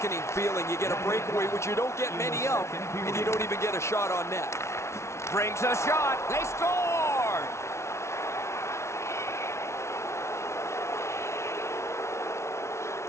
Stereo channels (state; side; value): late; right; 0.13 ms